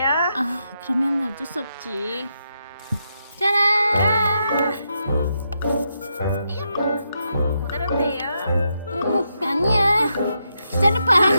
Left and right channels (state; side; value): inverted; both; correlation -0.82